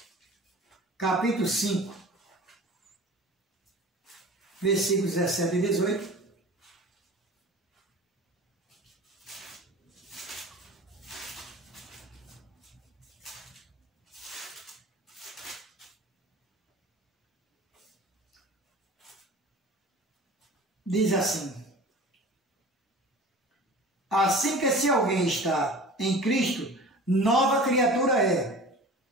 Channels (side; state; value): both; normal; correlation 0.40